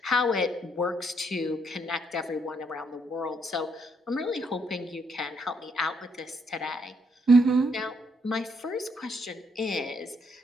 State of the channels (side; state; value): both; normal; correlation 0.73